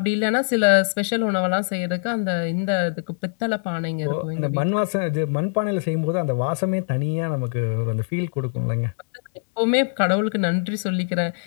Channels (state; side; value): silent; right; digital silence